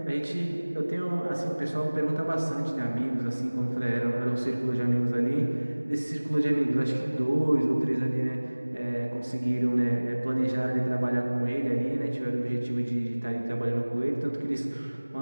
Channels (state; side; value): inverted; both; correlation -1.00